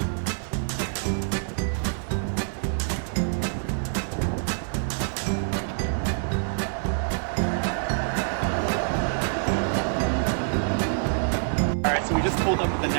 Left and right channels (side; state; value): left; silent; 58 dB below the other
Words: Alright, so we just pulled up at the